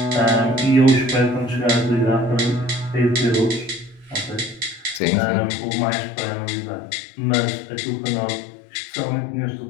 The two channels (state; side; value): drops out; right; at 5.0 s